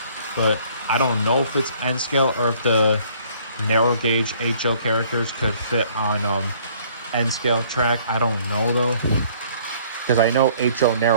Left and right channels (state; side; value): inverted; both; correlation -0.58